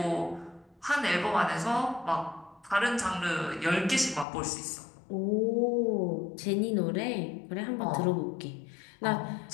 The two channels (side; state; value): right; drops out; at 4.2 s